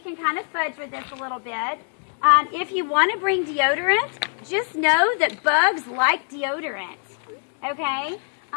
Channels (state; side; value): silent; right; 63 dB below the other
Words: kind of fudge with this a little bit. If you want to bring deodorant, just know that bugs like deodorant. Okay?